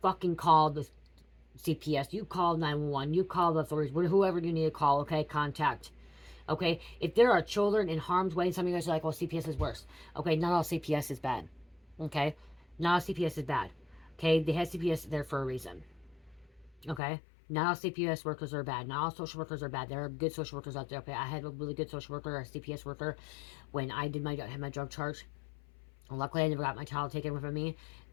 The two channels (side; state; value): right; drops out; at 17.0 s